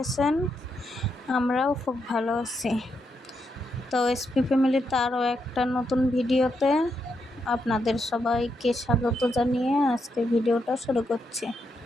আছেন। আমরাও খুব ভালো আছি। তো এসপি ফ্যামিলিতে আরও একটা নতুন ভিডিওতে আপনাদের সবাইকে স্বাগত জানিয়ে আজকে ভিডিওটা শুরু করছি।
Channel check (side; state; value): both; normal; correlation 0.81